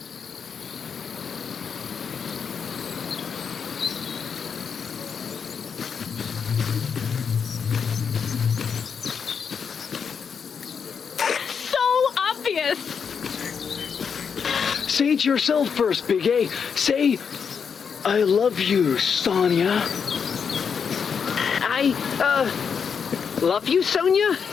So obvious! Say it yourself first, Big A. Say, I love you, Sonia. Love you, Sonia?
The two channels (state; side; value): quieter; right; 6.5 dB